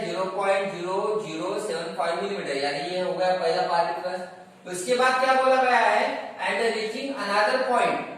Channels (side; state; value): both; identical; correlation 1.00